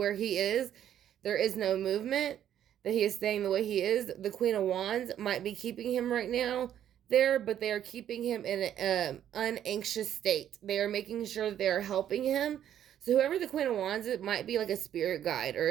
he is, there is no movement. that he is staying the way he is. The Queen of Wands might be keeping him right now there, but they are keeping him in an unanxious state. They are making sure they are helping him. So whoever the Queen of Wands is, it might be like a spirit guide or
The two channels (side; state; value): left; quieter; 10.5 dB